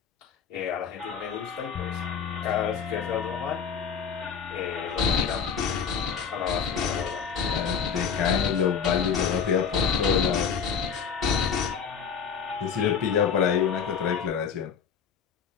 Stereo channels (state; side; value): quieter; right; 6.8 dB